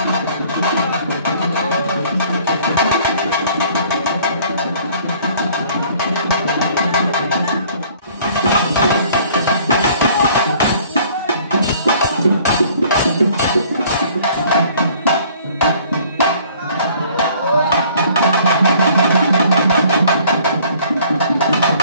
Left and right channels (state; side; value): inverted; both; correlation -0.56